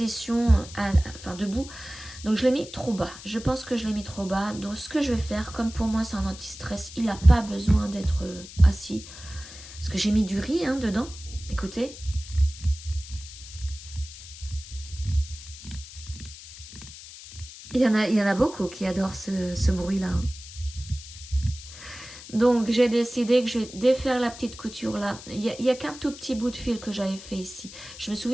enfin, debout. Donc je l'ai mis trop bas. Je pense que je l'ai mis trop bas. Donc ce que je vais faire, comme pour moi c'est un anti-stress, il n'a pas besoin d'être assis. Parce que j'ai mis du riz hein, dedans. Écoutez. Il y en a beaucoup qui adorent ce bruit-là. Hein. Donc j'ai décidé que je vais défaire la petite couture là. Il y a qu'un tout petit bout de fil que j'avais fait ici. Je me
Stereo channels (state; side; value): noise; left; hiss, 15 dB below the sound